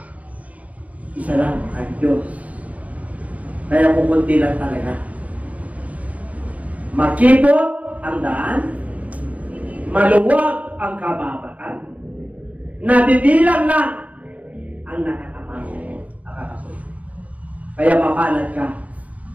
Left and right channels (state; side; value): late; left; 0.069 ms